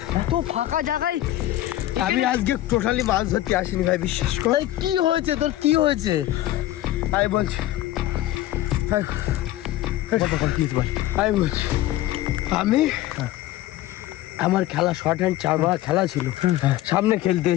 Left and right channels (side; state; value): right; quieter; 14.8 dB